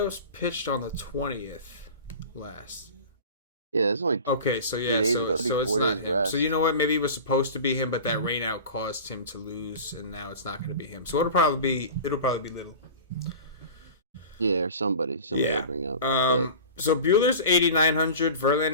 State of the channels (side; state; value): both; inverted; correlation -0.35